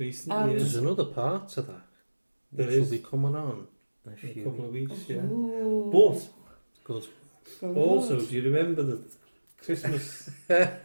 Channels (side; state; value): both; inverted; correlation -1.00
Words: there's another part to that There which will is. be coming on in a in a few couple of weeks, yeah. Ooh. But Good. Good. also, do you remember the Christmas? Yeah,